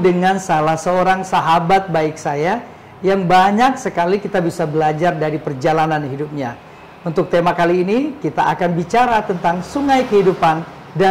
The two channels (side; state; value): both; identical; correlation 1.00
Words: dengan salah seorang sahabat baik saya yang banyak sekali kita bisa belajar dari perjalanan hidupnya. Untuk tema kali ini, kita akan bicara tentang sungai kehidupan